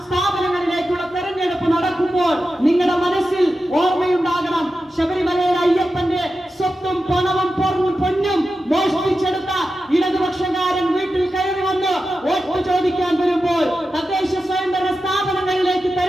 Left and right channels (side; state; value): both; normal; correlation 0.91